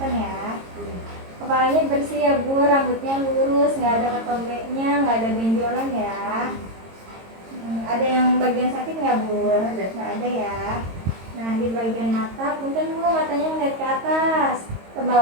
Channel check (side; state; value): left; late; 22 ms